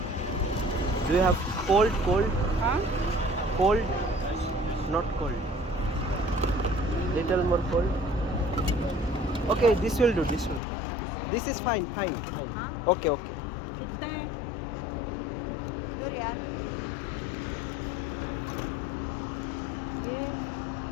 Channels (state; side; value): drops out; right; at 10.6 s